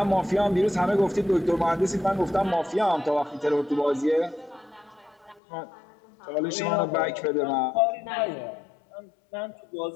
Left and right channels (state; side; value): drops out; right; at 5.4 s